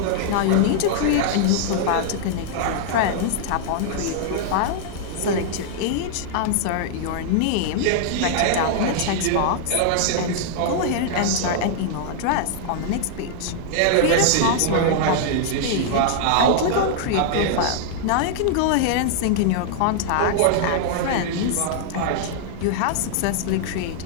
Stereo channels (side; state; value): both; different; correlation -0.01